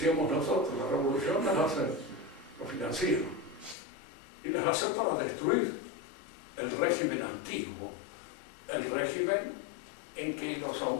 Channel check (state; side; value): drops out; right; at 3.8 s